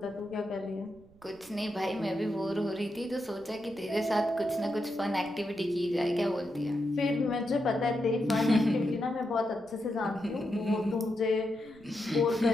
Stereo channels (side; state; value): right; noise; rumble, 26 dB below the sound